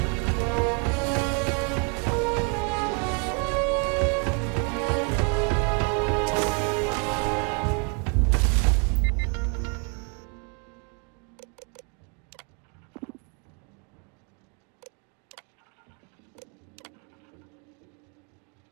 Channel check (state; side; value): quieter; left; 37.2 dB